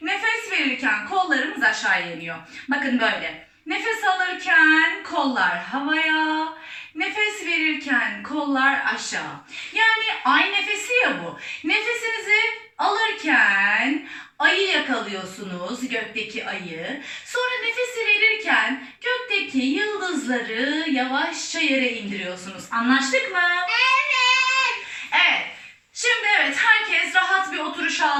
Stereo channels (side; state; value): both; identical; correlation 1.00